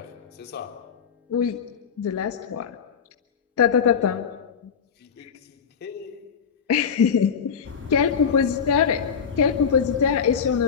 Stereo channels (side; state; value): right; quieter; 6.8 dB